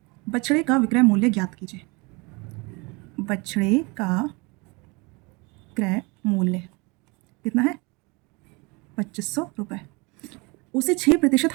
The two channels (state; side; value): quieter; left; 27.7 dB